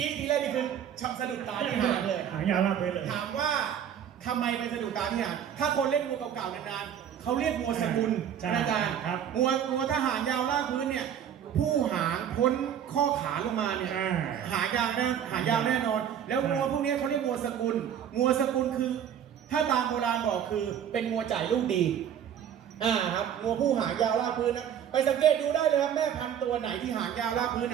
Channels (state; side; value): quieter; left; 9.2 dB